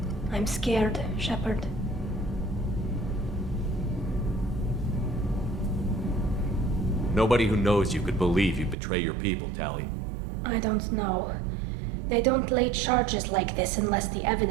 I'm scared, Shepard. Nobody who knows you could believe you betray your people, Tally. I don't know. They don't lay charges like this unless the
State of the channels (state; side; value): drops out; left; at 8.8 s